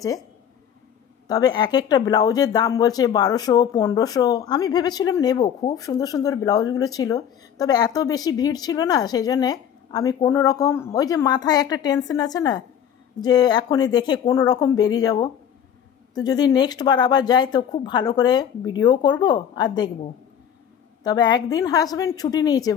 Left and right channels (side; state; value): right; quieter; 8.8 dB